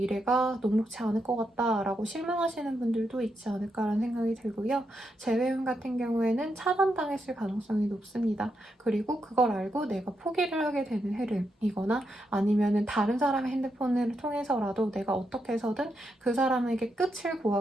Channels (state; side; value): normal; both; correlation 0.82